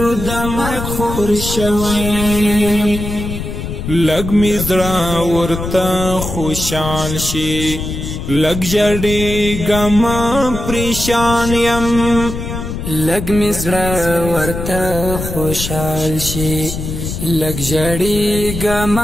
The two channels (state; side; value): noise; left; rumble, 6 dB below the sound